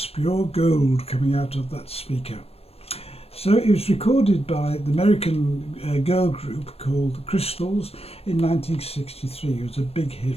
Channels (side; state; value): right; late; 0.29 ms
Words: pure gold coming out of that speaker. So it was recorded by the American girl group called the Crystals in 1963. It was a big